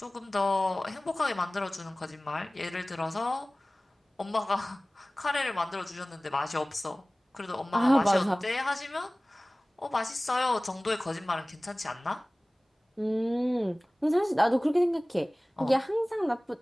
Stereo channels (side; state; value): both; normal; correlation 0.98